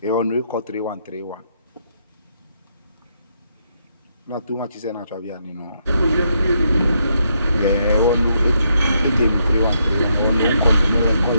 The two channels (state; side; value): inverted; both; correlation -0.77